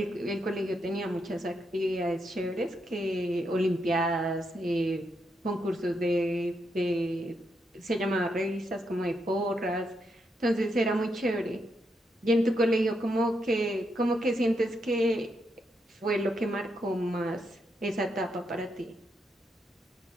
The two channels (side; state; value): both; normal; correlation 0.81